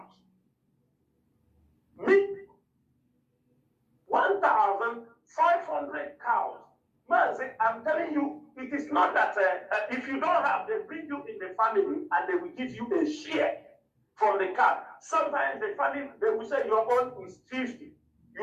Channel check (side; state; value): both; identical; correlation 1.00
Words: 1,500 cows. Man, I'm telling you, it is not that if you don't have, they bring you in the family and they will give you a share from the cow. Sometimes the family, they will say your own is 50.